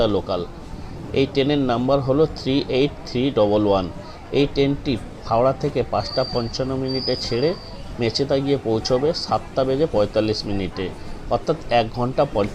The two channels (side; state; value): both; identical; correlation 1.00